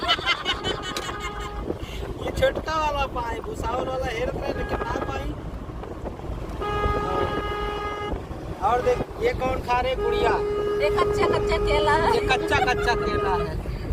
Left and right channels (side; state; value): both; identical; correlation 1.00